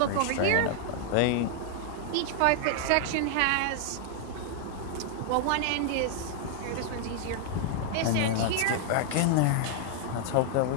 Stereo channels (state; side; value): different; both; correlation 0.00